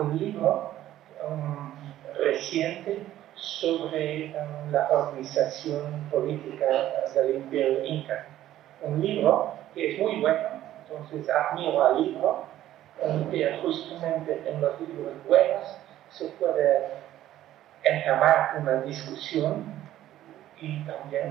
libro reciente sobre la organización política del Imperio Inca. Un libro que es muy bueno, entonces admiro al libro, pero justamente en los libros buenos se puede entamar una discusión y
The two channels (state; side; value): quieter; left; 13.2 dB